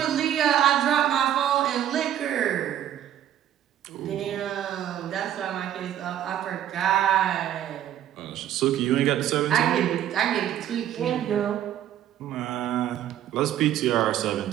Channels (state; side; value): quieter; left; 11.1 dB